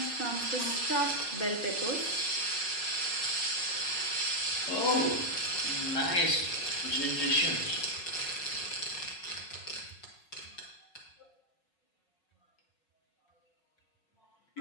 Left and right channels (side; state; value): right; late; 5.4 ms